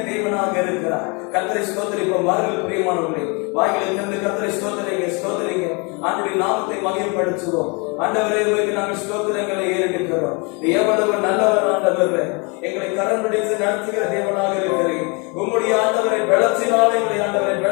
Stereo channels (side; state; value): right; quieter; 31.2 dB